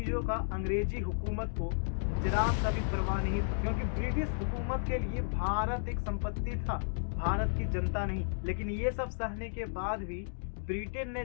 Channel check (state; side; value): silent; right; digital silence